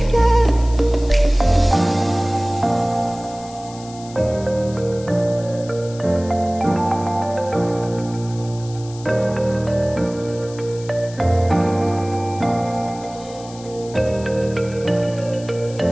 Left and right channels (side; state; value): left; noise; hiss, 19 dB below the sound